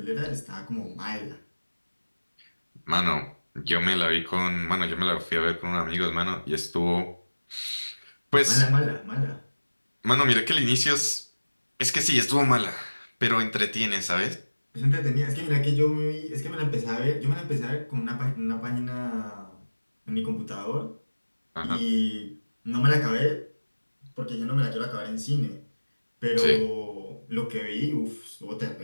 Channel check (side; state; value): both; inverted; correlation -1.00